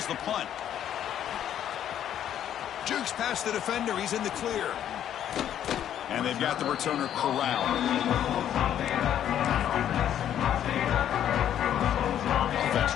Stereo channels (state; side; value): quieter; right; 10.4 dB